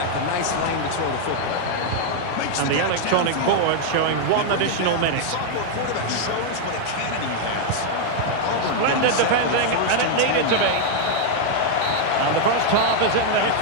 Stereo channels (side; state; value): both; different; correlation 0.00